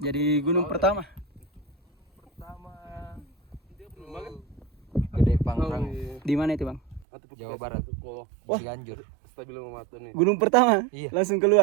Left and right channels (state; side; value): drops out; left; at 7.1 s